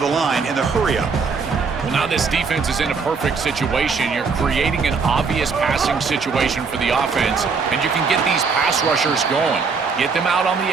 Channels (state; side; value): quieter; left; 5.1 dB